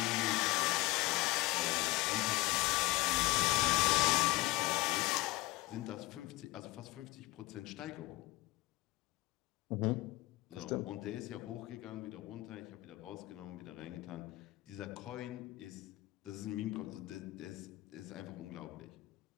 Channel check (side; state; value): right; quieter; 20.5 dB